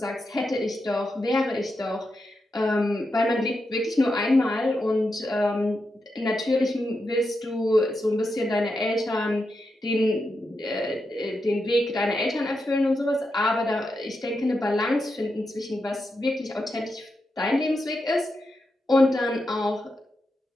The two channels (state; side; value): normal; both; correlation 0.87